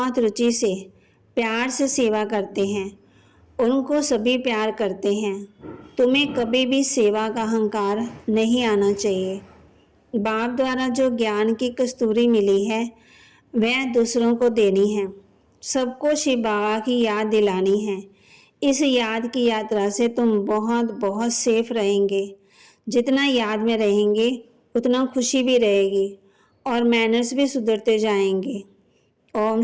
रुचि से प्यार से सेवा करते हैं उनको सभी प्यार करते हैं। तुम्हें कभी भी सेवा का अहंकार नहीं आना चाहिए। बाप द्वारा जो ज्ञान की कस्तूरी मिली है वह दूसरों को देनी है। सबको शिव बाबा की याद दिलानी है। इस याद की यात्रा से तुम बहुत बहुत सेफ रहेंगे। जितना याद में रहेंगे उतना खुशी भी रहेगी और मैनर्स भी सुधरते जाएंगे। ओम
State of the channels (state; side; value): identical; both; correlation 1.00